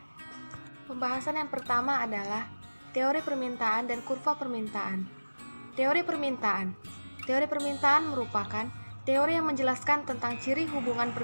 Pembahasan yang pertama adalah teori permintaan dan kurva permintaan. Teori permintaan. Teori permintaan merupakan teori yang menjelaskan tentang ciri hubungan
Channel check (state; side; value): inverted; both; correlation -1.00